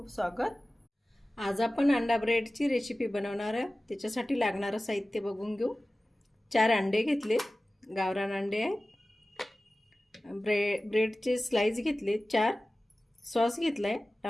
स्वागत। आज आपण अंडा ब्रेडची रेसिपी बनवणार आहे। त्याच्यासाठी लागणारं साहित्य बघून घेऊ। 4 अंडे घेतले, गावरान अंडे आहेत। ब्रेडचे स्लाइस घेतले 4। सॉस घेतलाय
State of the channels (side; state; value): both; normal; correlation 0.96